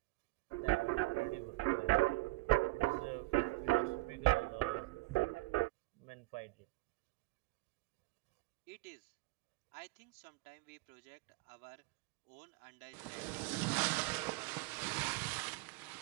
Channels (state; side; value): quieter; left; 22.3 dB